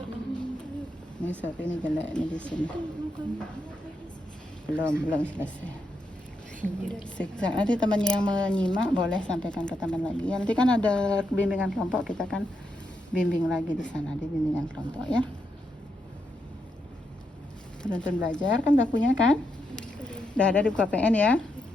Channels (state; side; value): normal; both; correlation 0.82